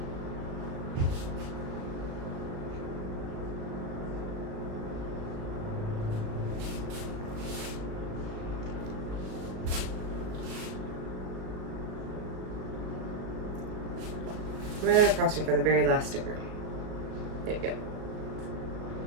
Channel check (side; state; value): left; late; 37 ms